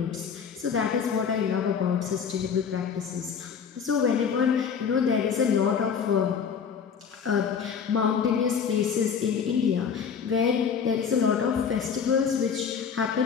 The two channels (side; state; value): right; quieter; 6.8 dB